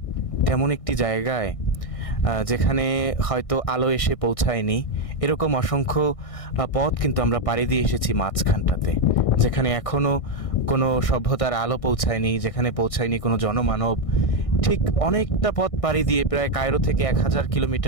তেমন একটি জায়গায় যেখানে হয়তো আলো এসে পৌঁছায়নি, এরকম অসংখ্য পথ কিন্তু আমরা পাড়ি দিয়ে এসেছি মাঝখানটাতে, যেখানে এখনও কোনো সভ্যতার আলো পৌঁছায়নি, যেখানে পৌঁছায়নি কোনো জনমানব। ঠিক অনেকটা পথ পাড়ি দিয়ে প্রায় কায়রো থেকে 1000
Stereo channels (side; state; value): right; late; 1.6 ms